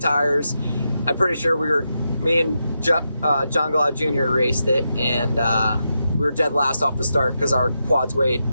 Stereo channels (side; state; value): both; inverted; correlation -0.86